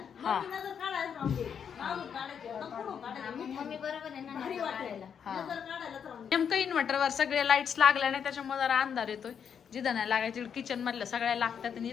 काढायला राहून दे मागून काढायचे पुढून काढायचे भारी वाटायला नजर काढायलाच राहून दे. नेमकं इन्व्हर्टरवर सगळे लाईट्स लागल्या नाही त्याच्यामुळे जरा अंधार येतोय जिथं नाही लागायची किचन मधल्या सगळ्या लागतात आणि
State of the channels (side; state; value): right; quieter; 7.6 dB